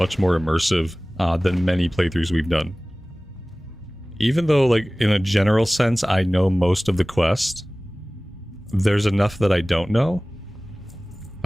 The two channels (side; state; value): both; normal; correlation 0.98